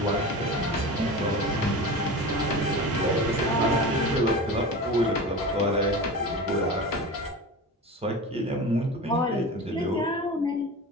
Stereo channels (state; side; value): normal; both; correlation 0.31